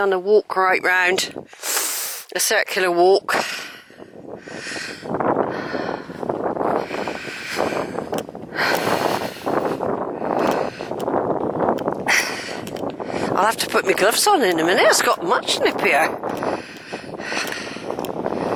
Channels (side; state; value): both; identical; correlation 1.00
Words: a walk right round. A circular walk. I'll have to put my gloves on in a minute, it's got much nippier.